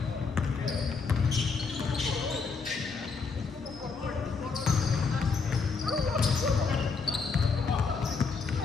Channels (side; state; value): right; quieter; 4.8 dB